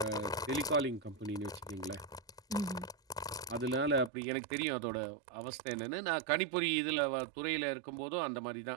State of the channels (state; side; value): drops out; left; at 4.1 s